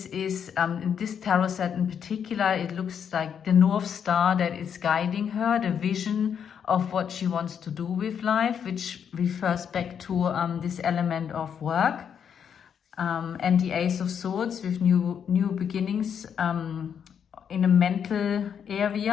is, in this tarot set in particular, it looks like the North Star that is guiding her, the vision of what she wants to do with life, which refers back to this element of work. And the Ace of Swords with new beginnings in a mental area.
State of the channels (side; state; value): right; quieter; 7.9 dB